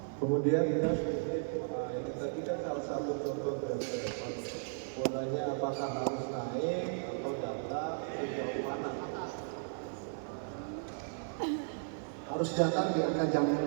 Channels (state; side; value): silent; left; 54 dB below the other